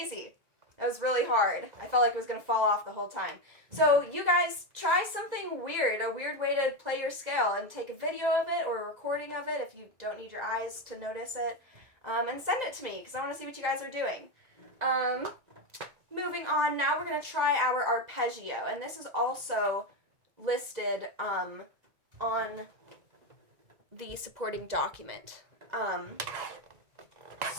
That was really hard. I felt like it was going to fall off the whole time. So you guys try something weird, a weird way to play your scale, and take a video of it or a recording of it if you don't need your eyes to notice it, and send it to me because I want to see what you guys are doing. Moving on, now we're going to try our arpeggio, and this is also listed on the supporting document.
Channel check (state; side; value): late; left; 1.9 ms